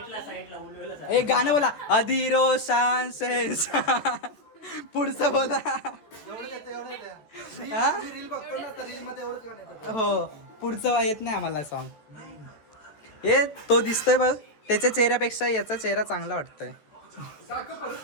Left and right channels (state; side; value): late; right; 14 ms